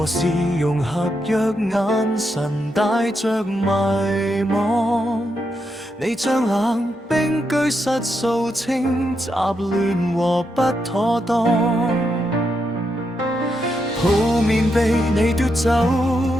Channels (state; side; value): normal; both; correlation 0.82